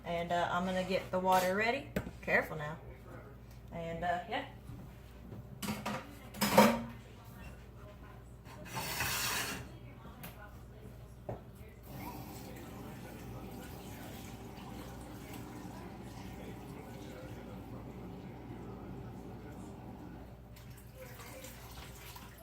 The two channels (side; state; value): both; identical; correlation 1.00